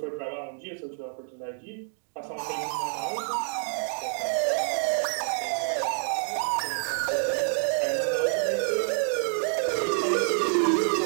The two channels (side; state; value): left; silent; 60 dB below the other